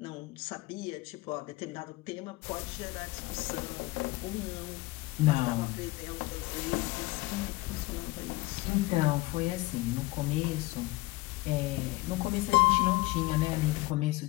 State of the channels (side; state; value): right; quieter; 20.8 dB